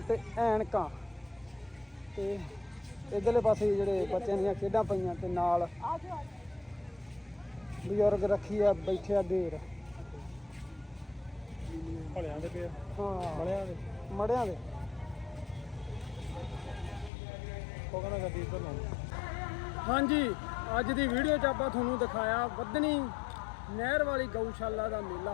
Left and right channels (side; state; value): right; drops out; at 17.1 s